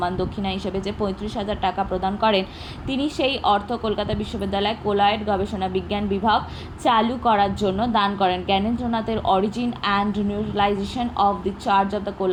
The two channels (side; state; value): both; identical; correlation 1.00